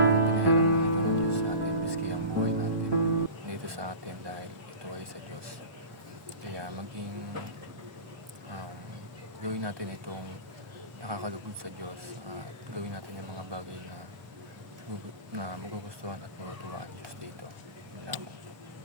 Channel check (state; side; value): late; left; 1.2 ms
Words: lang ito ng Diyos sa atin, miski ang buhay natin dito sa atin, dahil ito ay sa Diyos. Kaya gawin natin itong nakakalugod sa Diyos, at gawin natin yung mga bagay na magugustuhan at matutuwa ang Diyos dito. Yun lamang.